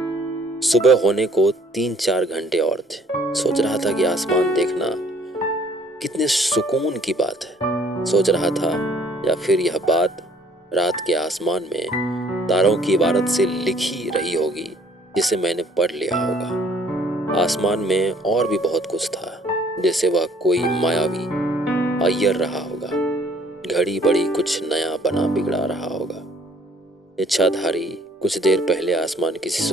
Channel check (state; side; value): normal; both; correlation 0.59